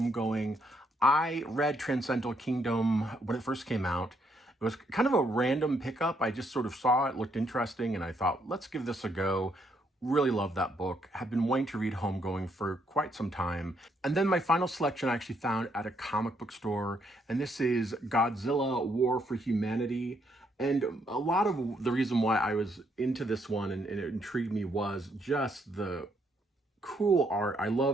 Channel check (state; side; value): normal; both; correlation 0.73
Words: I read Transcendental Kingdom when it first came out. It was kind of a random pickup. I just sort of saw it, looked interesting, and I thought, let's give this a go. Really love that book. Have been wanting to read Homegoing for quite some time. And then my final selection I actually found at a comic book store, and this is Godzilla War for Humanity. And a lot of the reason why I was into this one and it intrigued me was just the cool art. I